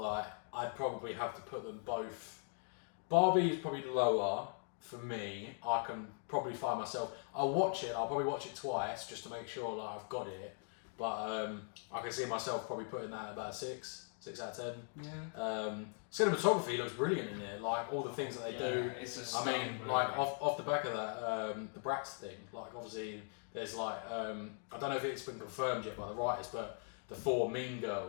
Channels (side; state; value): right; silent; 51 dB below the other